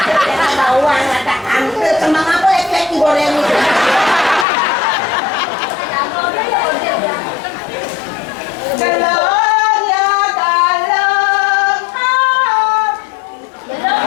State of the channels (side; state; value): right; drops out; at 4.5 s